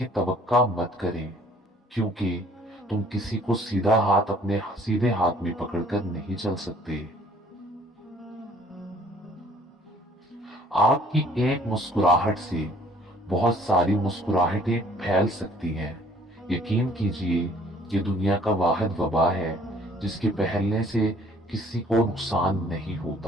तवक्का मत करें, क्योंकि तुम किसी को सीधा हाथ अपने सीधे हाथ में पकड़कर नहीं चल सकते। आपकी एक मुस्कुराहट से बहुत सारी मुस्कुराहटें फैल सकती हैं। यकीन कीजिए, ये दुनिया का वाहिद वबा है जिसके फैलने से किसी को नुकसान नहीं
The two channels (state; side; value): normal; both; correlation 0.58